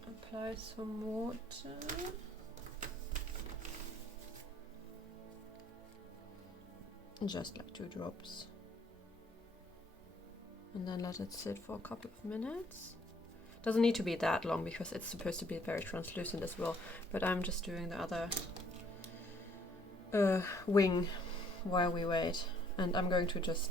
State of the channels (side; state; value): both; normal; correlation 0.63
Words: apply some water. Just like 2 drops. And then let it sit for a couple of minutes. Doesn't need to be that long because it's supposed to be very translucent as well, but I'm just doing the other wing while we wait, and I'm going to